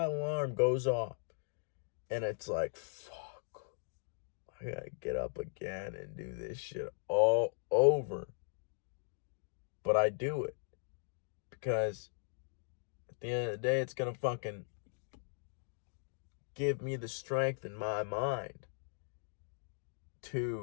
alarm goes off and it's like, fuck, I gotta get up again and do this shit all over. But I do it because at the end of the day, it's gonna fucking give me the strength in my mind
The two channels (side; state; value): right; silent; digital silence